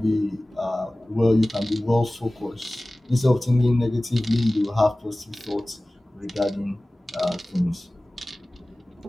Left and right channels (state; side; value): normal; both; correlation 0.98